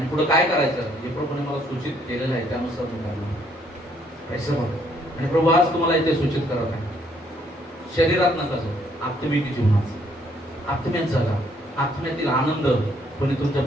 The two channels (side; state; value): both; normal; correlation 0.67